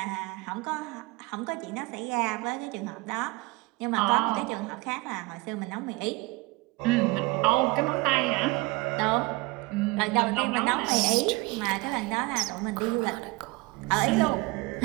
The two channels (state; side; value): quieter; left; 22.7 dB